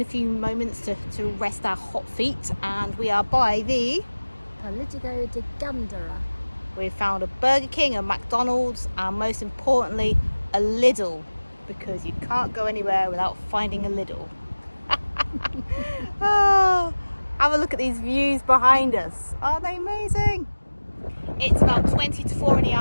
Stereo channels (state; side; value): inverted; both; correlation -1.00